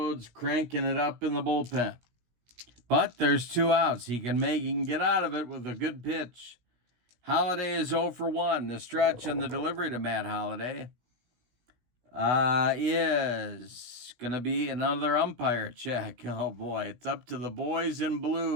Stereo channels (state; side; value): late; left; 17 ms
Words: cranking it up in the bullpen. But there's 2 outs. He can get out of it with a good pitch. Holliday is 0 for 1. The stretch and the delivery to Matt Holliday is going to be another umpire check. Oh, boy. It's up to the boys in